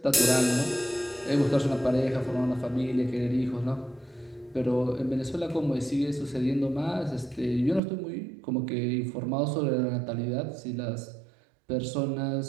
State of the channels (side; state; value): left; drops out; at 7.8 s